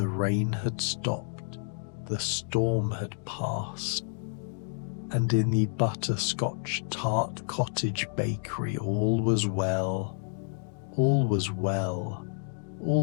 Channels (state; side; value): silent; right; digital silence